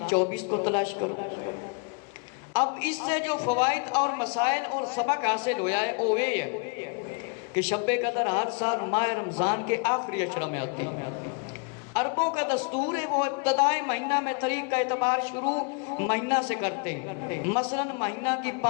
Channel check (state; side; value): quieter; right; 34.3 dB